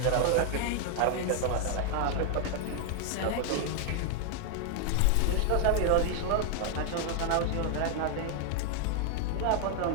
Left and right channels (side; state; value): both; different; correlation 0.00